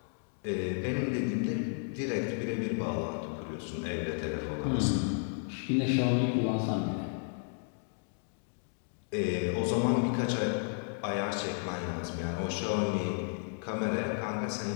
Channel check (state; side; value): silent; right; 56 dB below the other